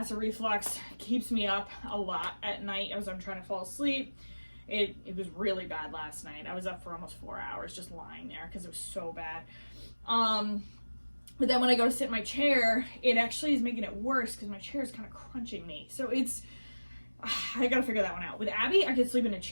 reflux keeps me up a lot at night as I'm trying to fall asleep. It was really bad last night. I was up for almost 4 hours just lying there because it was so bad. But then when I go to sit in my chair, it actually is making it worse because my chair is kind of crunching me. So it's, I gotta figure that one out. With Abby, I could sleep in a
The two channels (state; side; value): inverted; both; correlation -1.00